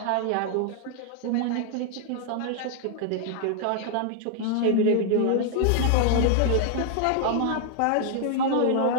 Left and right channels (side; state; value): both; different; correlation 0.00